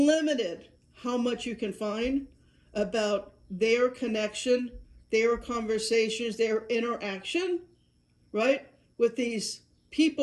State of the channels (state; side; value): identical; both; correlation 1.00